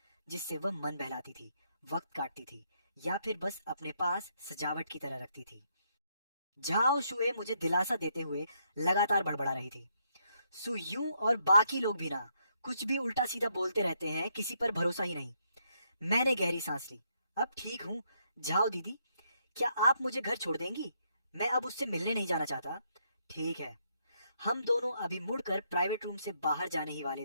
जिससे वह मन बहलाती थी, वक्त काटती थी, या फिर बस अपने पास सजावट की तरह रखती थी। झाओ शुए मुझे दिलासा देते हुए लगातार बड़बड़ा रही थी। सु यूं और बाकी लोग भी ना, कुछ भी उल्टा सीधा बोलते रहते हैं, किसी पर भरोसा ही नहीं। मैंने गहरी सांस ली। अब ठीक हूँ। झाओ दीदी, क्या आप मुझे घर छोड़ देंगी? मैं अब उससे मिलने नहीं जाना चाहता। ठीक है। हम दोनों अभी मुड़कर प्राइवेट रूम से बाहर जाने ही वाले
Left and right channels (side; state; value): both; inverted; correlation -0.75